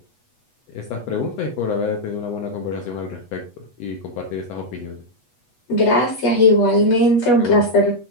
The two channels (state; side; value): late; right; 8.2 ms